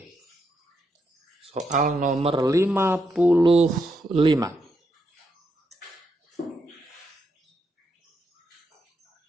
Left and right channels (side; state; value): both; normal; correlation 0.81